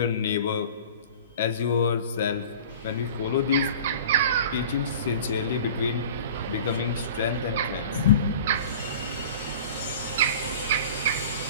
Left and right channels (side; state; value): both; inverted; correlation -0.41